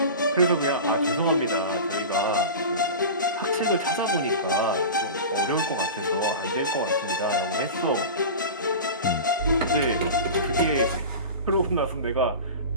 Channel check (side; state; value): both; inverted; correlation -0.30